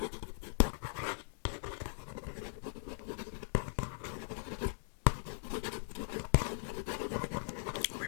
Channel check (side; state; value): right; silent; digital silence